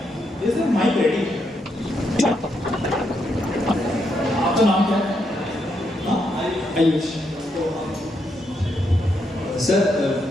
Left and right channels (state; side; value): normal; both; correlation 0.79